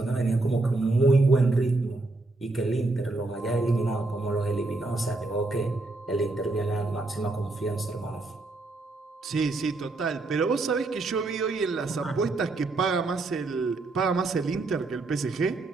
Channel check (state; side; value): quieter; left; 3.2 dB